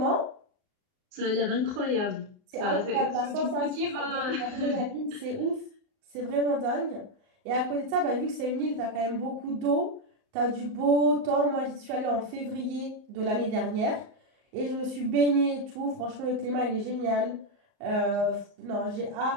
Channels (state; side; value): late; left; 38 ms